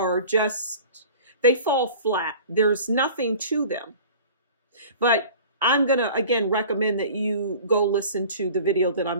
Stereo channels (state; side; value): inverted; both; correlation -0.43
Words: just, they fall flat. There's nothing to them. But I'm going to, again, recommend that you go listen to the video that I'm